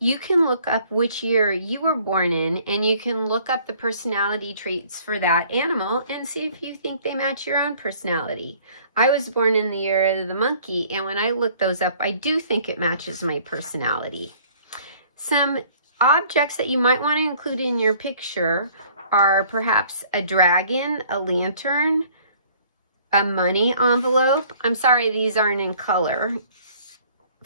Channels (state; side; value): inverted; both; correlation -0.56